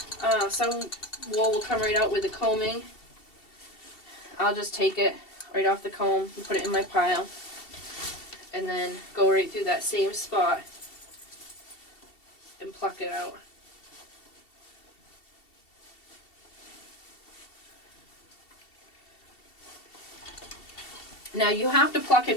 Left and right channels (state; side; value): late; right; 2.7 ms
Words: Some wool will come right out with the combing. I'll just take it right off the comb and put it in my pile. And then go right through that same spot and pluck it out. Now you have to pluck